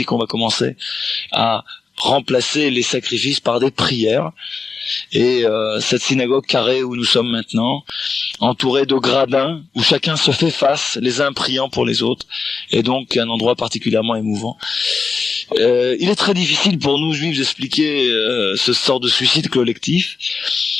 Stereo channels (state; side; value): quieter; right; 4.8 dB